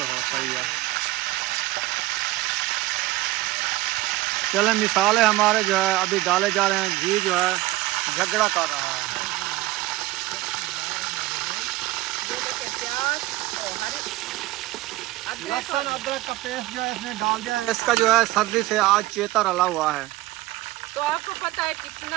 हो, सही है। चले, मिसाले हमारे जो है अभी डाले जा रहे हैं। घी जो है झगड़ा कर रहा है। ये देखिए प्याज और हरी लहसुन अदरक का पेस्ट जो है इसने डाल दिया है। इसका जो है सर्दी से आज चेता रला हुआ है। तो आपको पता है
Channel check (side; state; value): left; quieter; 18.1 dB